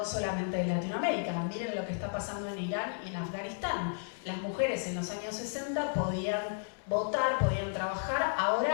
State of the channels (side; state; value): right; silent; digital silence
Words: solamente en Latinoamérica. Miren lo que está pasando en Irán y en Afganistán. Las mujeres en los años 60 podían votar, podían trabajar,